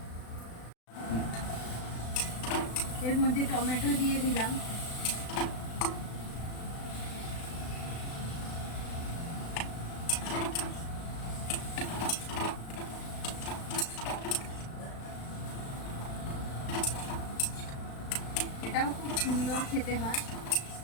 এর মধ্যে টমেটো দিয়ে দিলাম। এটাও খুব সুন্দর খেতে হয়,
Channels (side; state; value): right; late; 36 ms